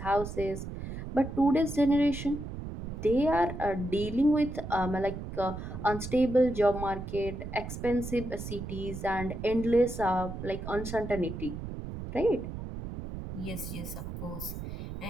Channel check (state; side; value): noise; right; rumble, 8 dB below the sound